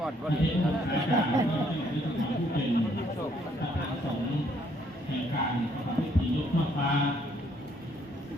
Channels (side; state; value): both; normal; correlation 0.68